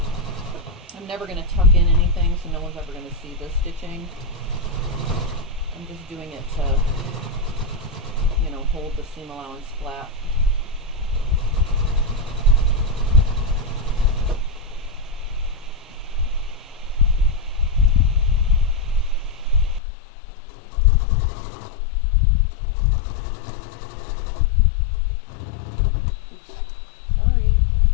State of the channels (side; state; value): right; drops out; at 19.8 s